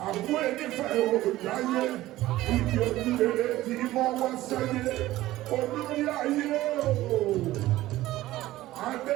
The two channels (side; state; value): left; quieter; 16.1 dB